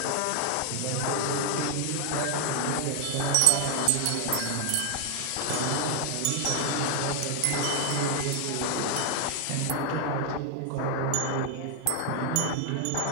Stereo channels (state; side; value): different; both; correlation 0.00